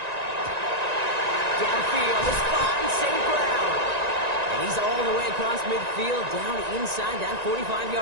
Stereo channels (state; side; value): late; left; 1.9 ms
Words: Downfield, this fine St. Brown. And he's all the way across midfield, down inside that